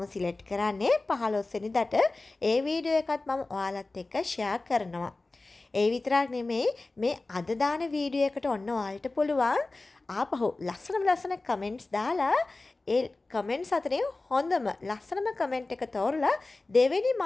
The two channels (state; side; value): quieter; right; 3.2 dB